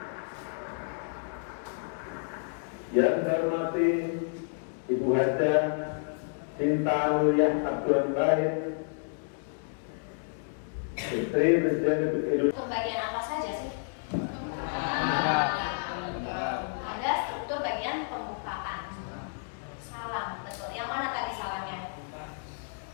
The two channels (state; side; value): silent; right; digital silence